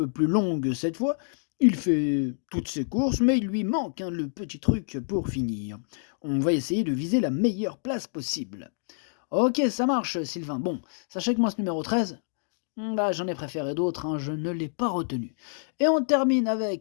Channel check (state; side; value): silent; right; digital silence